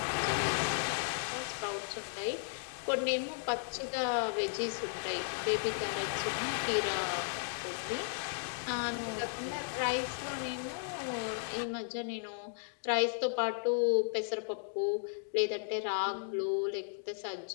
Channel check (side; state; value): right; silent; digital silence